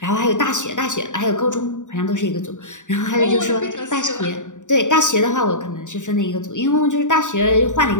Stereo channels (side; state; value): right; late; 0.86 ms